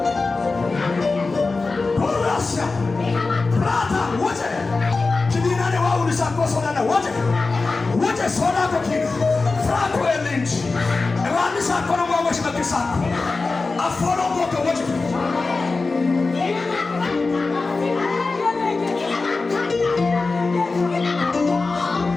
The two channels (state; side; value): quieter; right; 3.8 dB